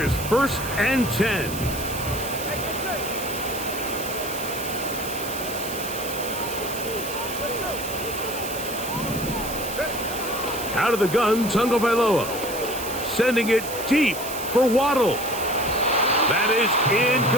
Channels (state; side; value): noise; right; hiss, 9 dB below the sound